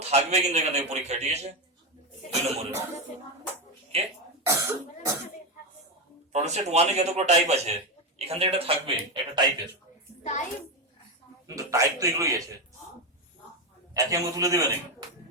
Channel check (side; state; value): both; normal; correlation 0.10